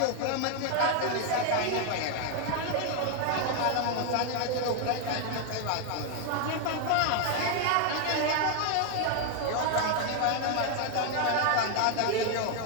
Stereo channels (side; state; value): both; different; correlation 0.00